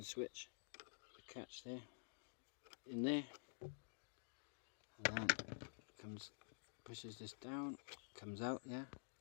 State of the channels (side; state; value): right; silent; digital silence